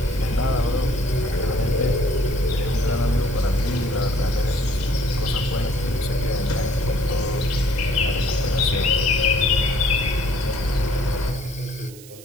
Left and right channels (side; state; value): right; noise; hiss, 19 dB below the sound